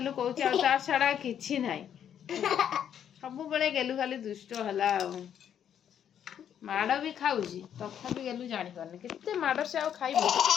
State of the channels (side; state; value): right; quieter; 9.2 dB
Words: कौच छड़ा कि ना सब बेले गेलु खाली दुष्ट है माड़ भी खाऊँ तथा भी गेलु जानी पारनी केते माड़ से आ खाइब